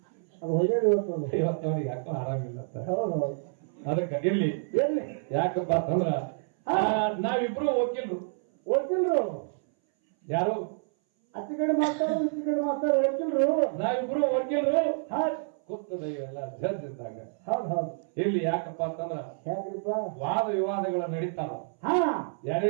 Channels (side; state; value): left; silent; 59 dB below the other